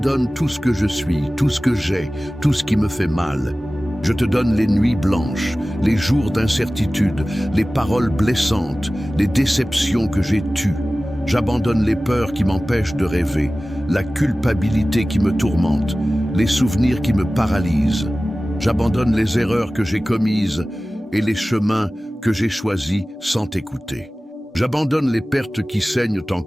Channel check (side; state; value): both; normal; correlation 0.97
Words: tout ce que je suis, tout ce que j'ai, tout ce qui me fait mal. Je te donne les nuits blanches, les jours d'incertitude, les paroles blessantes, les déceptions que j'ai tues. J'abandonne les peurs qui m'empêchent de rêver, la culpabilité qui me tourmente, les souvenirs qui me paralysent. J'abandonne les erreurs que j'ai commises et les chemins que j'ai choisis sans t'écouter. J'abandonne les pertes qui saignent